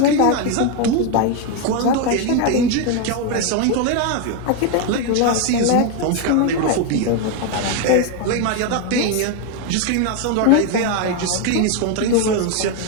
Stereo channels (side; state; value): both; different; correlation 0.01